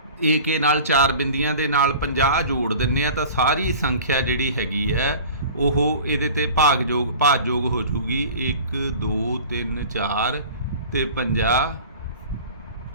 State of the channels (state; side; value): inverted; both; correlation -0.41